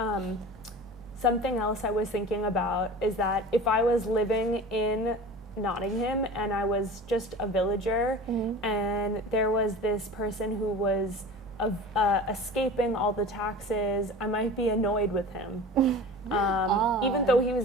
Something else I was thinking about is that if I was living in Nottingham and I was just a villager, and there was this person who was escaping all the taxes, I might be annoyed with him. Even though he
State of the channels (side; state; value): both; normal; correlation 0.37